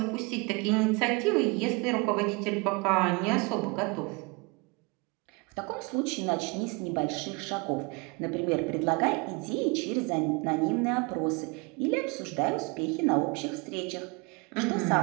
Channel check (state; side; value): quieter; left; 29.1 dB